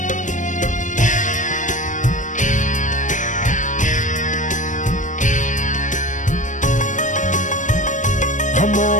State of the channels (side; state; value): right; late; 0.37 ms